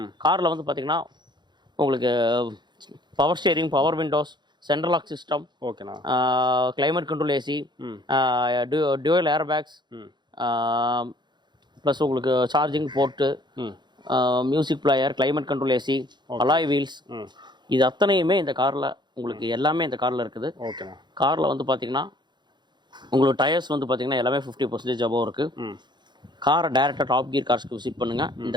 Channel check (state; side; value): late; left; 0.21 ms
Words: காரில் வந்து பார்த்தீங்கன்னா உங்களுக்கு power steering, power windows, central lock system, ஓகேண்ணா, climate control AC, dual air bags, plus உங்களுக்கு charging port, music player, climate control AC, alloy wheels, இது அத்தனையுமே இந்த காரில் உங்களுக்கு எல்லாமே இந்த காரில் இருக்குது. ஓகேண்ணா. காரில் வந்து பார்த்தீங்கன்னா உங்களுக்கு டயர்ஸ் வந்து பார்த்தீங்கன்னா எல்லாமே 50% அபோவ் இருக்குது. காரை டேரெக்டாக டாப் கியர் கார்ஸ்க்கு விசிட் பண்ணுங்கள். இந்த